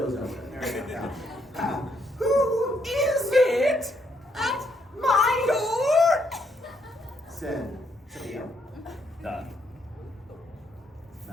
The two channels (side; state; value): both; normal; correlation 0.73